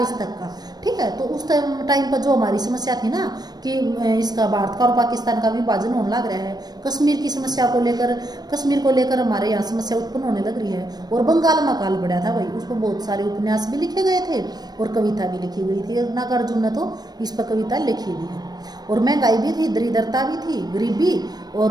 तक का, ठीक है। तो उस टाइम पर जो हमारी समस्या थी ना कि इसका भारत का और पाकिस्तान का विभाजन होने लग रहा है, कश्मीर की समस्या को लेकर, कश्मीर को लेकर हमारे यहाँ समस्या उत्पन्न होने लग रही है, और बंगाल में काल पड़ा था भाई, उस पर बहुत सारे उपन्यास भी लिखे गए थे और कविता भी लिखी गई थी। नागार्जुन ने तो इस पर कविता लिखी भी है। और महंगाई भी थी, दरिद्रता भी थी, गरीबी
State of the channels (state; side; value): late; left; 0.19 ms